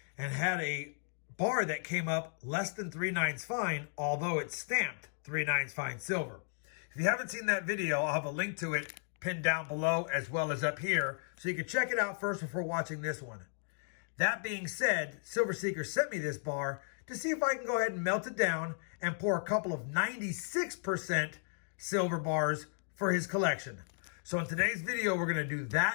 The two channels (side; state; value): right; silent; digital silence